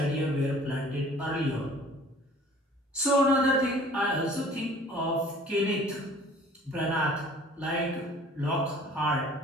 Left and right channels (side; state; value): both; normal; correlation 0.50